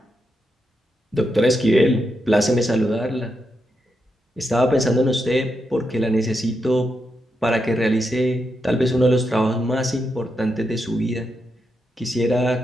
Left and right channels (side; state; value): both; normal; correlation 0.84